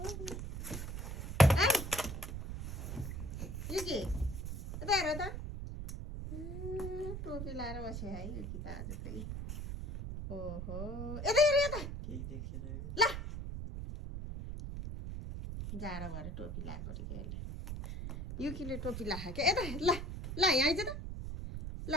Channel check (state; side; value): noise; right; rumble, 6 dB below the sound